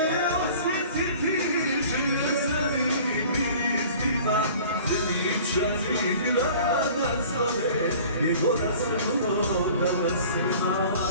osjetiti želje zanim izbima Svetičani grada zove gdje god da smo danas ima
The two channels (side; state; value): both; inverted; correlation -0.46